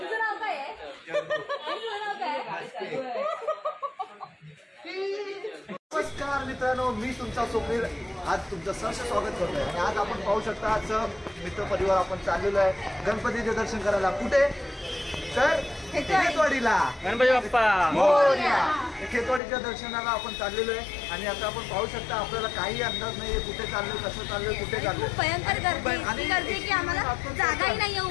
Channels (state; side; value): drops out; right; at 19.4 s